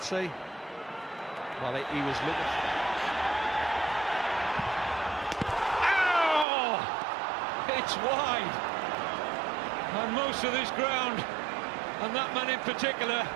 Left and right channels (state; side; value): drops out; left; at 6.5 s